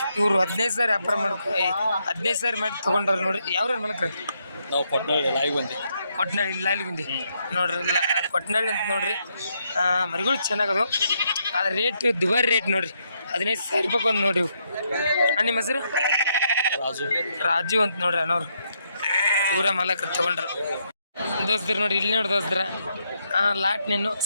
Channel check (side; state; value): both; inverted; correlation -0.77